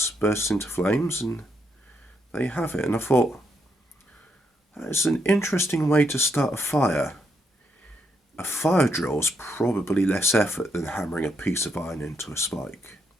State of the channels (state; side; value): normal; both; correlation 0.77